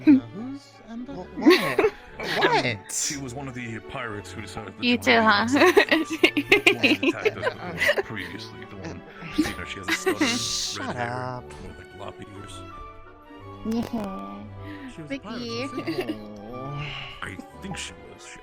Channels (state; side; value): identical; both; correlation 1.00